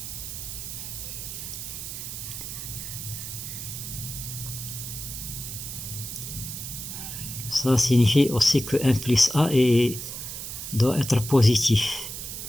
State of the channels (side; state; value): right; noise; hiss, 7 dB below the sound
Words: Ça signifie aussi que 1 plus a doit être positif,